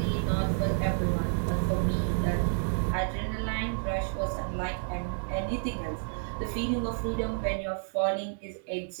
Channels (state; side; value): silent; left; digital silence